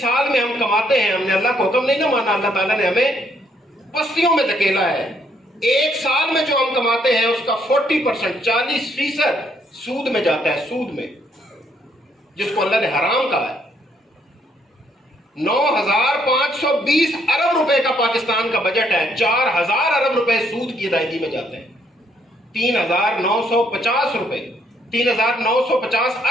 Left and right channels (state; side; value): normal; both; correlation 0.70